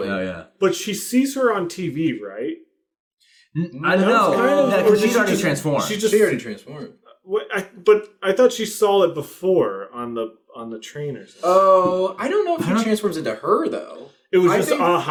Oh yeah. But she sees her on TV, right? I don't know. Kind of- or Because did she's she already just- transformed. She just She already transformed. but I thought she saw it before on the train or something. Oh, I don't know if she transforms into her though. It was I just think a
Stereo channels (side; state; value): both; identical; correlation 1.00